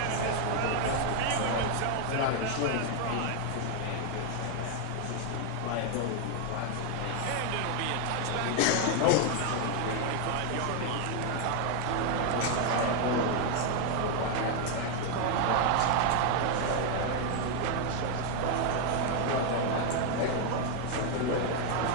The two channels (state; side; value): different; both; correlation 0.01